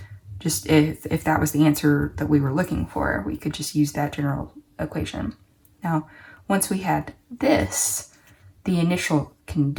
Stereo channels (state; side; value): identical; both; correlation 1.00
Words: just if that was the answer that we were looking for, we could just use that general equation. Now, once we had this, the initial